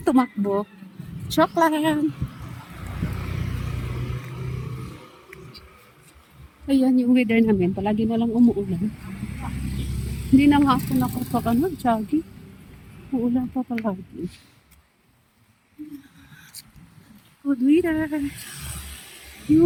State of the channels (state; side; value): identical; both; correlation 1.00